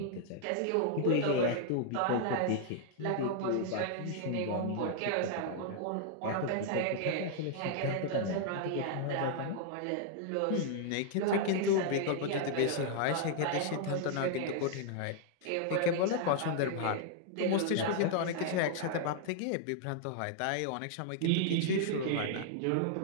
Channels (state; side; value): different; both; correlation -0.01